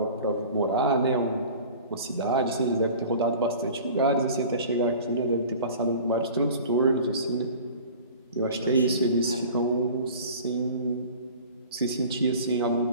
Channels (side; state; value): both; inverted; correlation -0.42